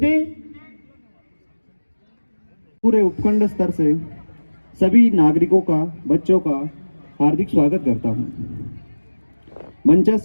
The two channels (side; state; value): both; inverted; correlation -1.00